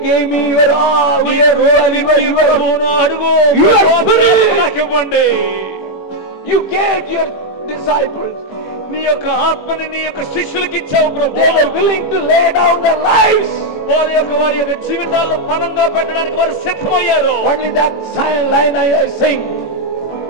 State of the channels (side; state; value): right; late; 21 ms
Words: give me your ప్రభువును అడుగు. నాకు ఇవ్వండి. యు గేవ్ యువర్ డిసైపుల్స్, నీ యొక్క ఆత్మని నీ యొక్క శిష్యులకు ఇచ్చావు ప్రభువా. They were willing to lay down there lives, వారి యొక్క జీవితాలను పణంగా పెట్టడానికి వారు సిద్ధమయ్యారు. Only that line I sing,